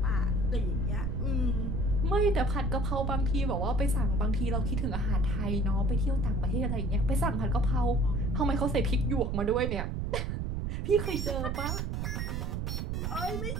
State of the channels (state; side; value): noise; right; rumble, 1 dB below the sound